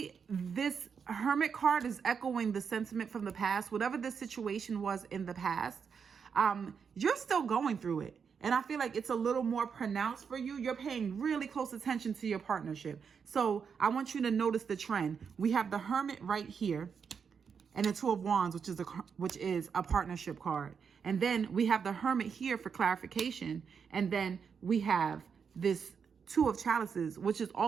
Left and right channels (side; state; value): left; quieter; 6.4 dB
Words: this Hermit card is echoing the sentiment from the past. Whatever the situation was in the past, you're still going through it. And I feel like it's a little more pronounced for you. You're paying really close attention to your partnership. So I want you to notice the trend. We have the Hermit right here and the 2 of Wands, which is a partnership card. And then we have the Hermit here for clarification. And then we have this 2 of Chalices, which is